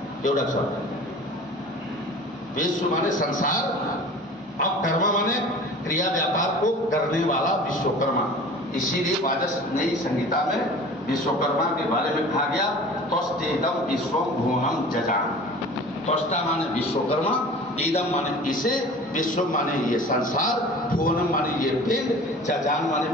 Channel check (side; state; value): both; normal; correlation 0.42